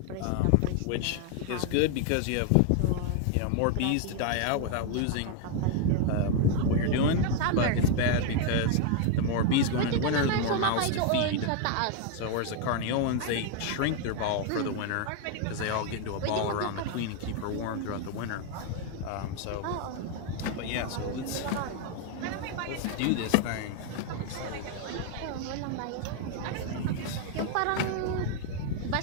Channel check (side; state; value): both; different; correlation 0.01